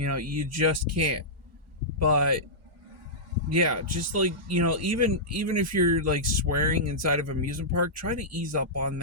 just can't. But yeah, just like, even if you're like swearing inside of an amusement park, try to ease up on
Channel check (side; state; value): both; normal; correlation -0.13